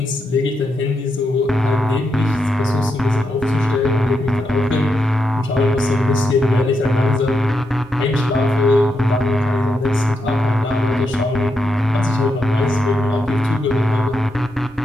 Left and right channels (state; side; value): normal; both; correlation 0.83